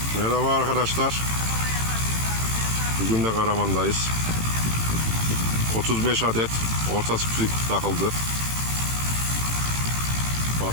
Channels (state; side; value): late; left; 18 ms